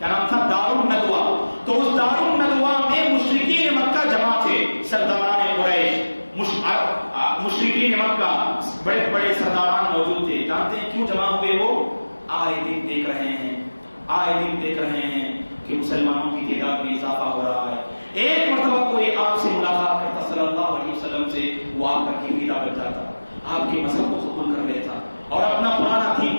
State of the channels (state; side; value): inverted; both; correlation -1.00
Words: نام تھا؟ دار الندوہ. تو اس دار الندوہ میں مشرکین مکہ جمع تھے، سرداران قریش، مشرکین مکہ بڑے بڑے سرداران موجود تھے. جانتے ہیں کیوں جمع ہوئے؟ وہ آئے دن دیکھ رہے ہیں کہ مسلمانوں کی تعداد میں اضافہ ہو رہا ہے. ایک مرتبہ کوئی آپ سے ملاقات کرتا صلی اللہ علیہ وسلم سے، وہ آپ کا گرویدہ بن جاتا، آپ کے مذہب کو قبول کر لیتا اور اپنا پرانا